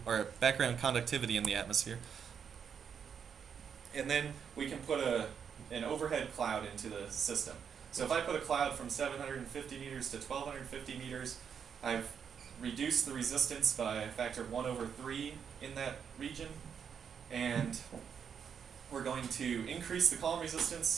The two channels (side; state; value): left; quieter; 7.3 dB